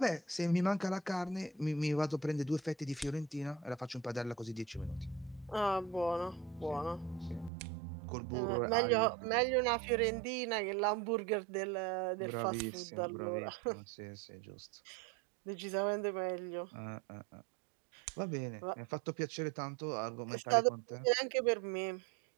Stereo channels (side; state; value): left; drops out; at 7.5 s